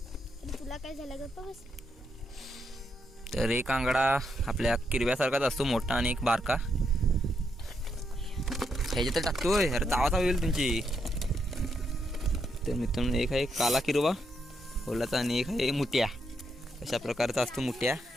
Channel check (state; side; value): normal; both; correlation 0.80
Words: तुला काय झालं गप्पा बस. तर एक आंगडा आपल्या किरव्यासारखाच असतो, मोठा आणि एक बारका. ह्याच्यात टाकतोय. अरे चावा होईल तुमची. तर मित्रांनो एक आहे काला किरवा ओलाचा आणि एक आहे मुठ्या. अशा प्रकारचा असतो मुठ्या.